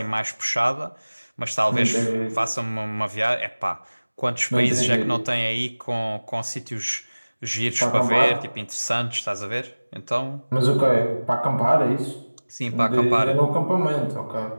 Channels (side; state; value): both; inverted; correlation -1.00